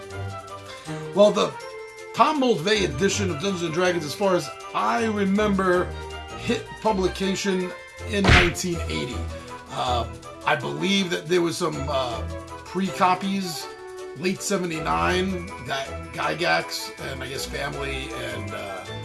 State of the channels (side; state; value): both; identical; correlation 1.00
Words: Well, the Tom Moldvay edition of Dungeons & Dragons, as far as I remember, hit publication in 1980. I believe that there was some pre-copies late 79 that Gygax and I guess family and